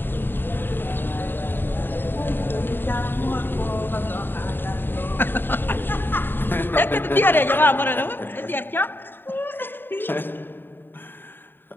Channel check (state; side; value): late; right; 0.096 ms